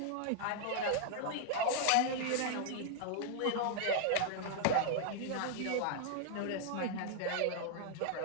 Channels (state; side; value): different; both; correlation 0.00